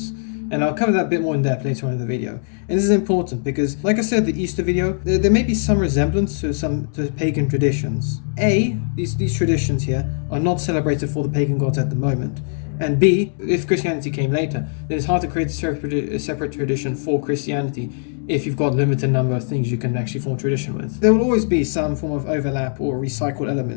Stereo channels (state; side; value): silent; right; digital silence